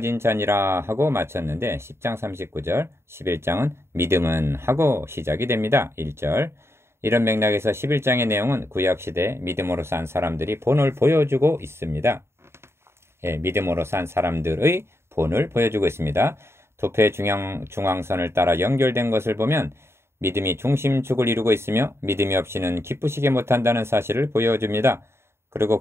자니라 하고 마쳤는데 10장 39절, 11장은 믿음은 하고 시작이 됩니다. 1절. 이런 맥락에서 11장의 내용은 구약시대 믿음으로 산 사람들이 본을 보여주고 있습니다. 믿음으로 산 사람들의 본을 보여주고 있습니다. 도표의 중앙선을 따라 연결된 것을 보면 믿음이 중심축을 이루고 있으며 믿음이 없이는 기쁘시게 못한다는 사실을 보여줍니다.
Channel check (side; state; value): left; late; 0.12 ms